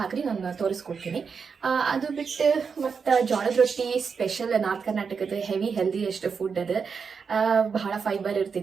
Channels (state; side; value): quieter; left; 5.8 dB